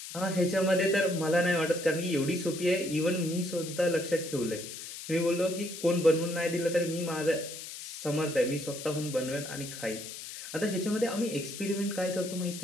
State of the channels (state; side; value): noise; left; hiss, 10 dB below the sound